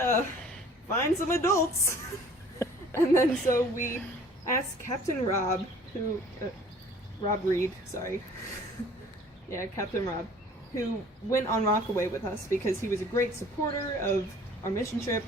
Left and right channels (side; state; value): both; normal; correlation 0.51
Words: find some adults. And then so we asked Captain Rob, Rob Reed, sorry. Yeah, Captain Rob, who went on Rockaway with us because he was a great supporter of our mission